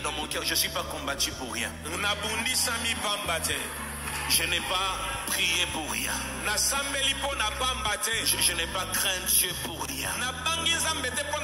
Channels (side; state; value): both; identical; correlation 1.00